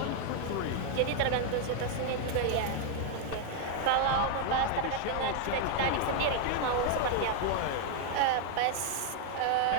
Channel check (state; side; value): different; both; correlation 0.00